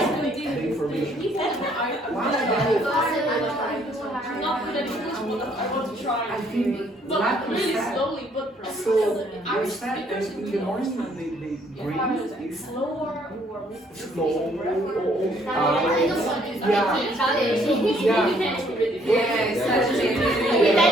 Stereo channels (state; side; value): normal; both; correlation 0.65